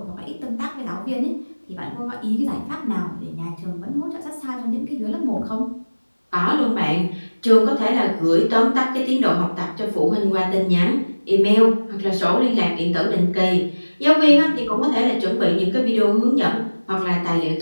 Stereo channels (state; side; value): inverted; both; correlation -1.00